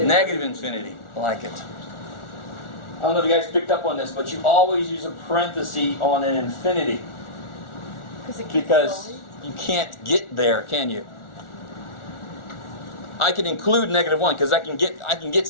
infinity. I like it. I don't know if you guys picked up on this, but you always use a parenthesis on an infinity. Because you can't get there, can you? I can include -1 because I can get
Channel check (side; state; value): right; late; 1.4 ms